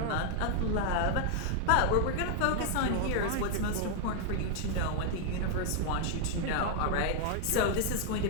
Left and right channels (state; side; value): different; both; correlation 0.00